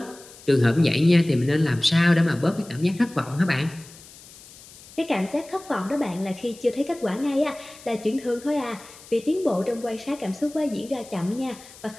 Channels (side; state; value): left; noise; hiss, 20 dB below the sound